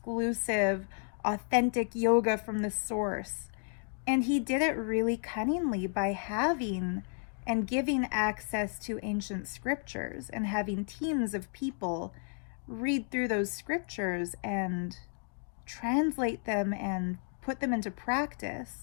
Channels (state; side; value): silent; right; 56 dB below the other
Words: authentic yoga from the source. And he did it really cunningly by having and giving access to ancient scriptures and having teams of people read through those scriptures and translate them and put them into